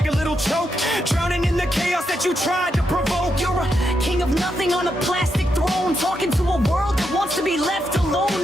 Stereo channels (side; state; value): both; normal; correlation 0.82